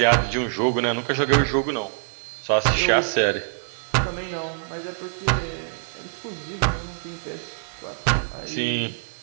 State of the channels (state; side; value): silent; left; digital silence